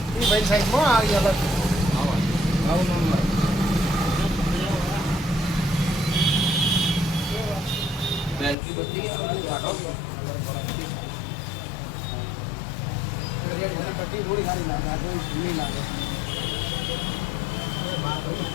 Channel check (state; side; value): drops out; right; at 8.6 s